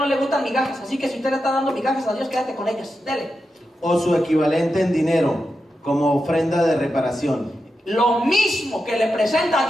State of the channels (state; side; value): normal; both; correlation 0.88